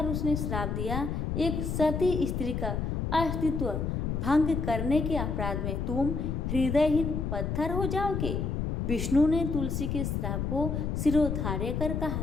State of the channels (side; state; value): left; noise; rumble, 1 dB below the sound